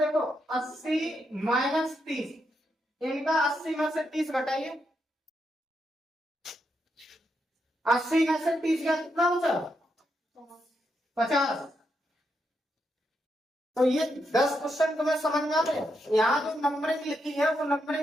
80 माइनस 30, इनका 80 में से 30 घटाइए, 80 में से 30 का कितना बचा, 50। तो ये 10 क्वेश्चन तुम्हें समझ में आ रहे। यहाँ जो नंबरिंग लिखी है वो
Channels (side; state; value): both; normal; correlation 0.82